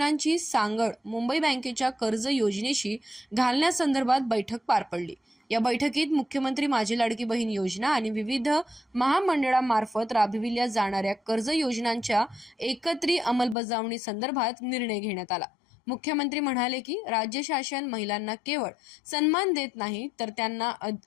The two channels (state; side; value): drops out; right; at 13.6 s